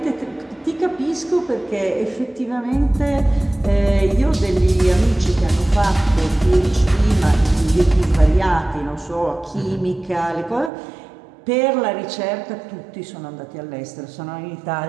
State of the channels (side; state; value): left; drops out; at 10.7 s